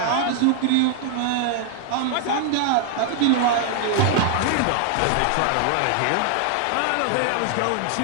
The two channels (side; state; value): both; different; correlation 0.00